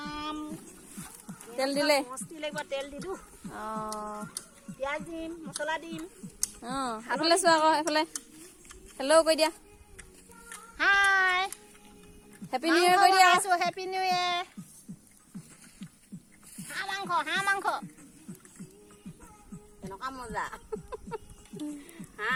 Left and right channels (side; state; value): both; identical; correlation 1.00